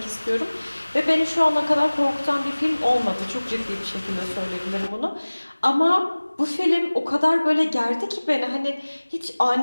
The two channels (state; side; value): inverted; both; correlation -1.00